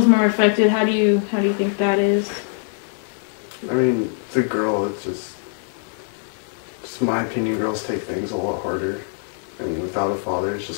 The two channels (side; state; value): right; silent; 64 dB below the other